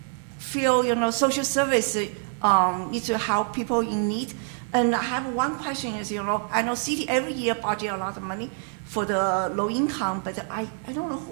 social service need to help people in need. And I have one question is, I know city every year budget a lot of money for the low income, but I don't know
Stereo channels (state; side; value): silent; left; 59 dB below the other